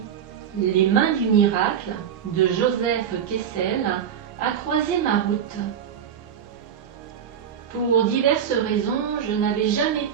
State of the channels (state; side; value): quieter; left; 8.5 dB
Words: Les mains du miracle, de Joseph Kessel, a croisé ma route. Pour diverses raisons, je n'avais jamais